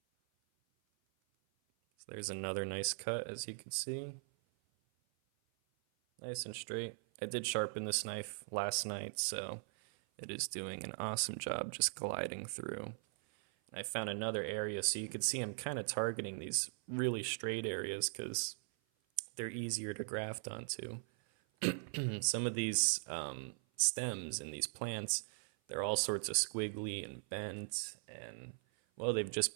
So there's another nice cut, as you can see. Nice and straight. I did sharpen this knife last night, so it is doing an awesome job just gliding through. I found another area, so you can see I'm kind of targeting these really straight areas because they're easier to graft onto. Some of these stems in these plants, they're all sorts of squiggly and bent, and well, they've just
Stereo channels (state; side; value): silent; left; 51 dB below the other